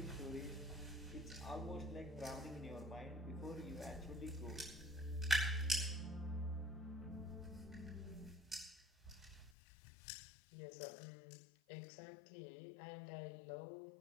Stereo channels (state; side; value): drops out; right; at 9.6 s